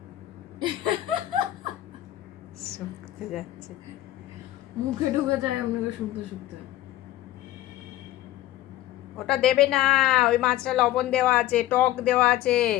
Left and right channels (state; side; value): quieter; right; 14.7 dB